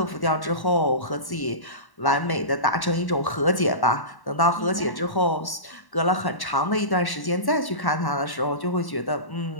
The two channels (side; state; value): right; late; 1.1 ms